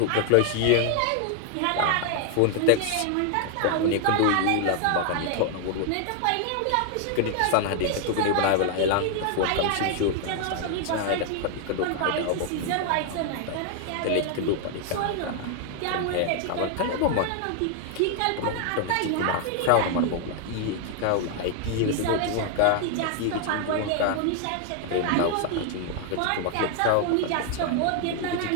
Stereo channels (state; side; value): different; both; correlation 0.00